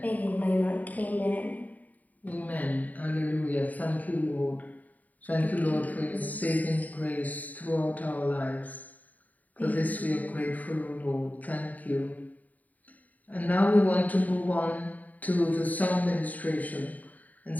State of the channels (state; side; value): late; right; 0.076 ms